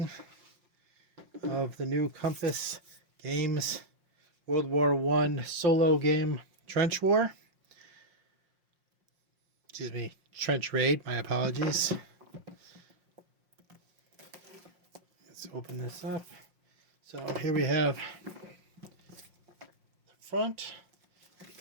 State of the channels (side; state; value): left; late; 5.6 ms